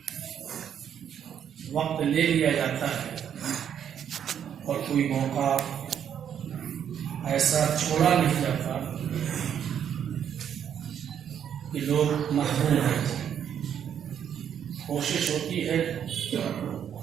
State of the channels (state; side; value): quieter; left; 8.9 dB